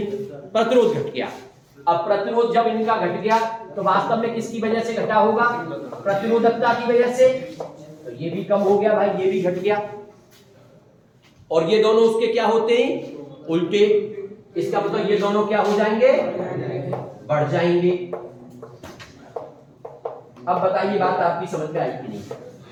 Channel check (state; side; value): identical; both; correlation 1.00